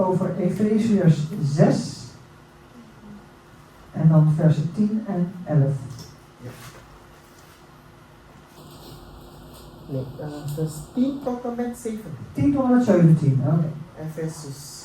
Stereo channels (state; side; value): identical; both; correlation 1.00